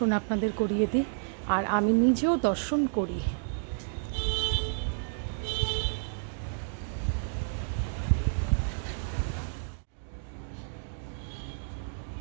আপনাদের করিয়ে দিই, আর আমি নিজেও দর্শন করি।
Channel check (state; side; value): silent; left; digital silence